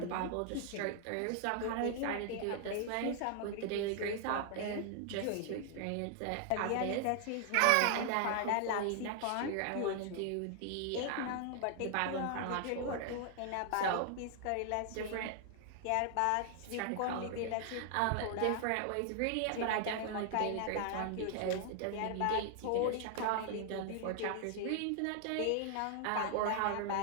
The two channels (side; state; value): both; different; correlation 0.00